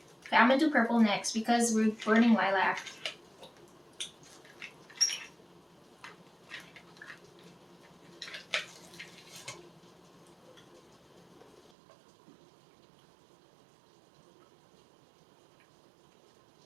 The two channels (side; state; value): left; drops out; at 11.7 s